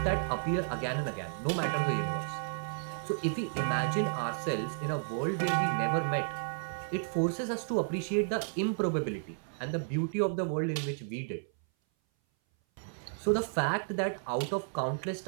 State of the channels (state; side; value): silent; left; 56 dB below the other